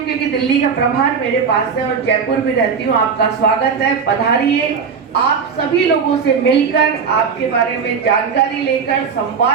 क्योंकि दिल्ली का प्रभार मेरे पास है, और जयपुर भी रहती हूँ, आपका स्वागत है, पधारिए। आप सभी लोगों से मिलकर, आपके बारे में जानकारी लेकर,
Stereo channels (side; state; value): left; quieter; 6.1 dB